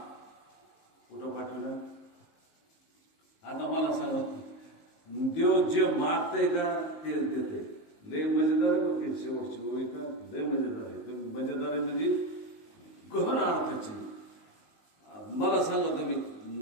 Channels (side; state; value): right; late; 19 ms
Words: कुठं पाठवला? आता मला सांगा देव जे मागतंय का तेच देतंय. लय मजेदार आहे बरं काही शेवटची ओळी का लय मजेदार आहे. तुम्ही मजेदार आहे म्हणजे गहन अर्थाची. मला सांगा तुम्ही